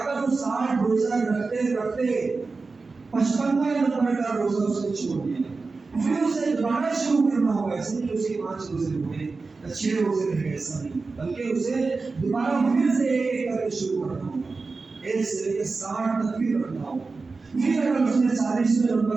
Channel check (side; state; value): left; quieter; 4.1 dB